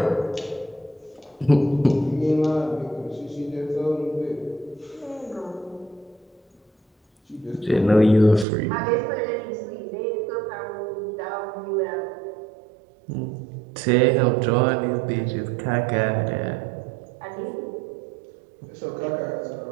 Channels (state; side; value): drops out; left; at 8.5 s